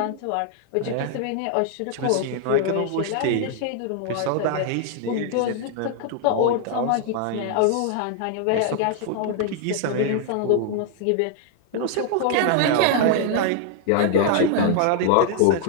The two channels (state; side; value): different; both; correlation 0.00